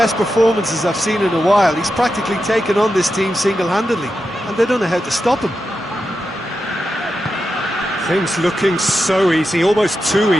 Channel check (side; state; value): both; normal; correlation 0.89